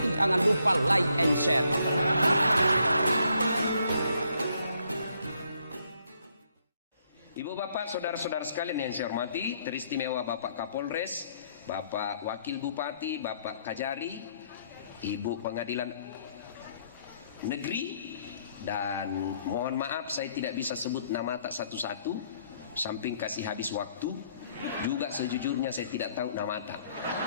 Jangan lupa like and share. Ibu bapak, saudara-saudara sekalian yang saya hormati, teristimewa Bapak Kapolres, Bapak Wakil Bupati, Bapak Kajari, Ibu Pengadilan Negeri, dan mohon maaf saya tidak bisa sebut nama tak satu-satu, samping kasih habis waktu, juga sejujurnya saya tidak tahu nama tak.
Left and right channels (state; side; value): inverted; both; correlation -0.70